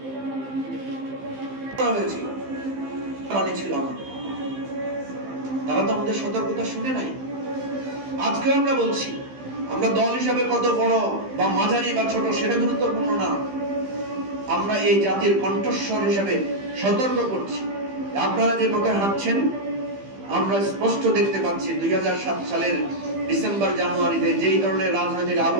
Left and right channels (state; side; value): late; left; 15 ms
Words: হয়েছিল ছিল আমাদের, তারা তো আমাদের সতর্কতা শুনে নাই। আজকে আমরা বলছি, আমরা দল হিসাবে কত বড় বা মাঝারি বা ছোট সেটা গুরুত্বপূর্ণ না, আমরা এই জাতির কণ্ঠস্বর হিসেবে সতর্ক করছি। আপনারা যে পথে হাঁটছেন আমরা স্পষ্ট দেখতে পাচ্ছি 2007 সালের ডিসেম্বর জানুয়ারিতে যেই ধরনের রাজনৈতিক